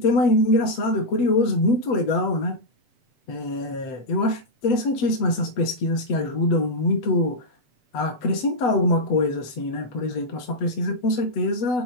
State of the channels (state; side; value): late; right; 8.0 ms